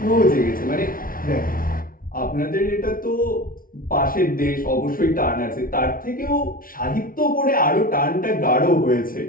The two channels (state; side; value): late; right; 0.42 ms